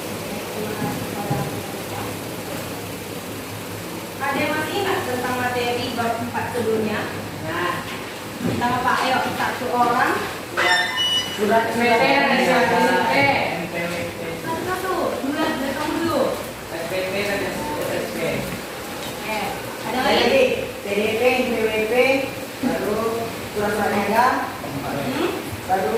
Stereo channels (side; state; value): both; identical; correlation 1.00